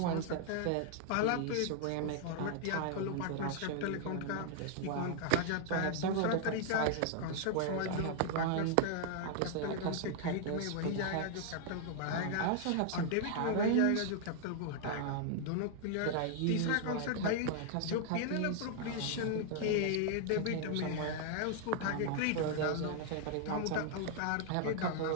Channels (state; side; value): different; both; correlation 0.00